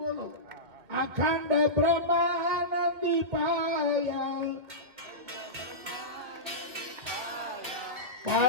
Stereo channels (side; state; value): left; late; 2.3 ms